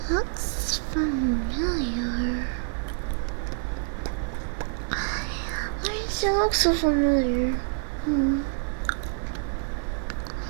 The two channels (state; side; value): silent; left; 60 dB below the other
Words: Looks familiar. Why does it look so familiar?